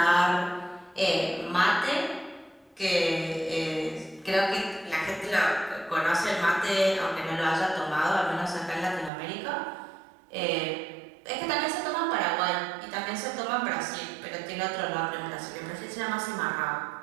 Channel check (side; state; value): left; drops out; at 9.1 s